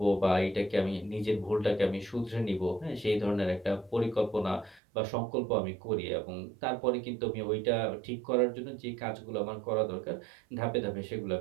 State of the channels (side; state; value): left; drops out; at 4.8 s